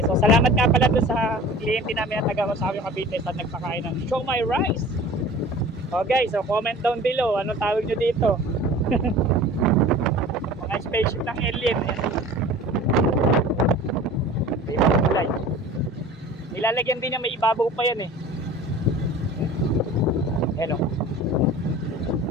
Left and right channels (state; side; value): normal; both; correlation 0.42